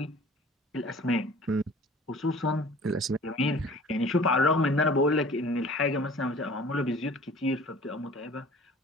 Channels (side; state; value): both; normal; correlation 0.47